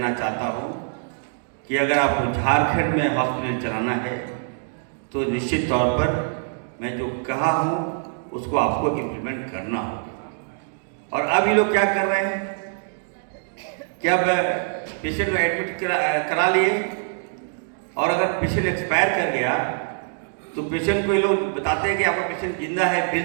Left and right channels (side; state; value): left; silent; digital silence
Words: चाहता हूँ कि अगर आपको झारखंड में हॉस्पिटल चलाना है तो निश्चित तौर पर मैं जो कहा हूँ उसको आपको इम्प्लीमेंट करना होगा। और अब ये लोग क्या कर रहे हैं कि अब पेशेंट को एडमिट करा लिए, और अगर पेशेंट एक्सपायर कर गया तो पेशेंट को ये लोग बताते हैं कि आपका पेशेंट जिंदा है, बिल